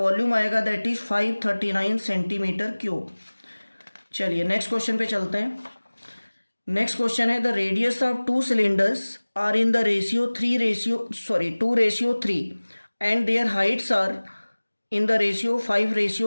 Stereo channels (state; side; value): inverted; both; correlation -1.00